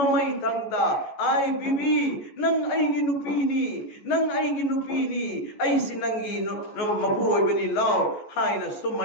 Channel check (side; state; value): right; late; 14 ms